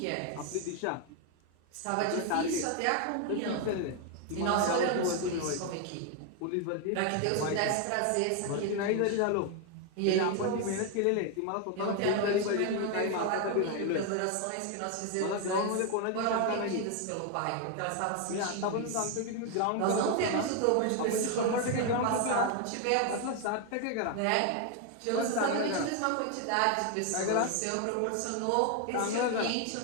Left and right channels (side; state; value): both; different; correlation 0.01